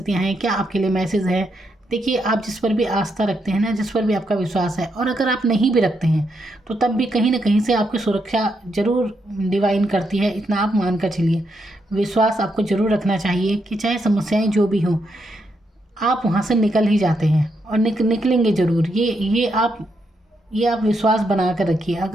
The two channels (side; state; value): both; normal; correlation 0.80